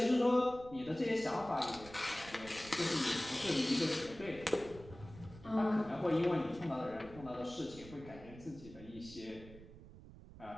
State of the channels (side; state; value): right; noise; rumble, 17 dB below the sound